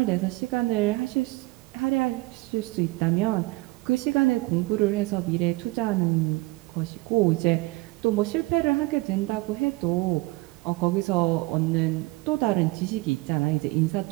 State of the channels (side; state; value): left; quieter; 21.9 dB